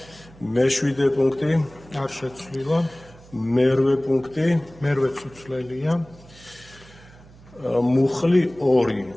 მეშვიდე პუნქტი? არ შეცვლილა. მერვე პუნქტი? მერვეც უცვლელია. მუხლი 2.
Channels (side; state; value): right; noise; hum, 23 dB below the sound